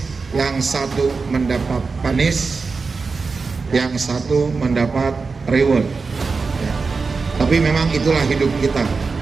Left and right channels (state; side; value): quieter; left; 4.5 dB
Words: yang satu mendapat panis, yang satu mendapat reward ya. Tapi memang itulah hidup kita.